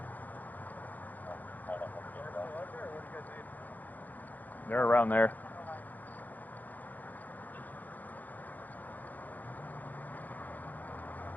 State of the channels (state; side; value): late; right; 0.083 ms